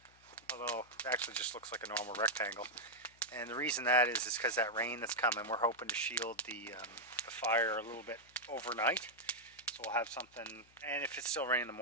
although it actually just looks like a normal rectangle. And the reason that is because that rain that's coming, we're hoping to shield the fire a little bit overnight. So we'll have something, and if it's still raining in the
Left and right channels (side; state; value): left; noise; hum, 29 dB below the sound